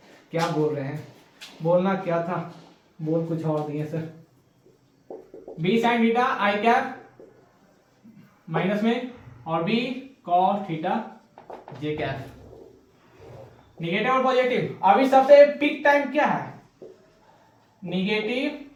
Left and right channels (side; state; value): both; identical; correlation 1.00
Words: क्या बोल रहे हैं, बोलना क्या था बोल कुछ और दिए sir. B sign theta I cap minus में और B cos theta J cap. Negative और पॉजिटिव। अभी सबसे पीक टाइम क्या है